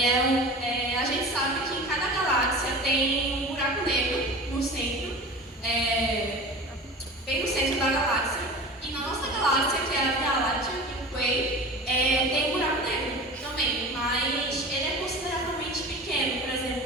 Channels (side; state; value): both; normal; correlation 0.35